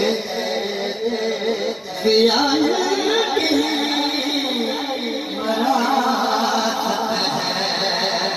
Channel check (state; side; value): identical; both; correlation 1.00